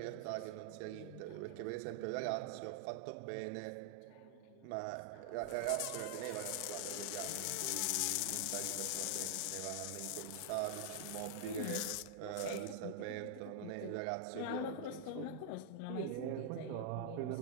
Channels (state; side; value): different; both; correlation -0.01